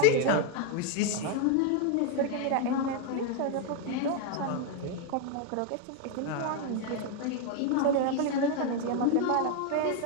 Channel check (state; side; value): different; both; correlation 0.01